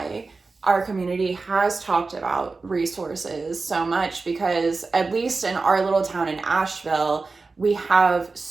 our community has talked about resources so much, because at least in our little town in Asheville, we have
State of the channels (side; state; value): left; quieter; 3.9 dB